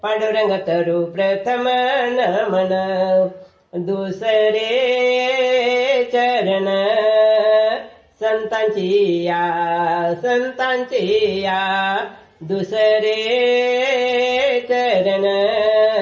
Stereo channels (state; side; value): identical; both; correlation 1.00